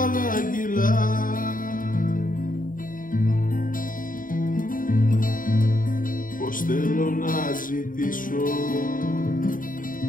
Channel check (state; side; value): late; right; 0.39 ms